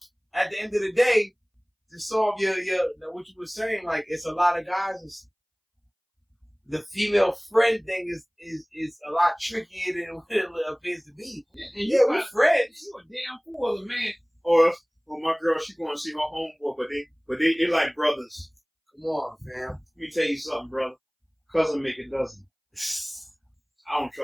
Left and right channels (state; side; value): identical; both; correlation 1.00